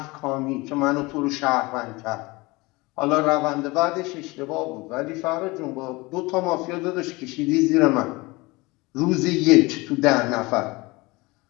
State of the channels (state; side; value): quieter; right; 23.3 dB